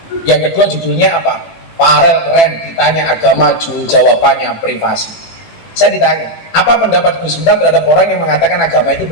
Yang kedua judulnya apa? Farel keren, ditanya agama, jawabannya privasi. Saya ditanya, apa pendapat Gus Miftah terhadap orang yang mengatakan agama itu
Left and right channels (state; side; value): late; right; 18 ms